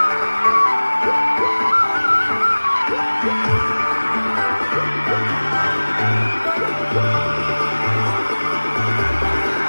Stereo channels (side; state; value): both; inverted; correlation -1.00